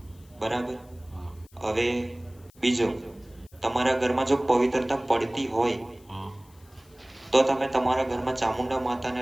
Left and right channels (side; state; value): left; noise; hiss, 29 dB below the sound